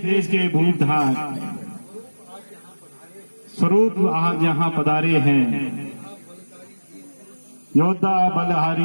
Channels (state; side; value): inverted; both; correlation -1.00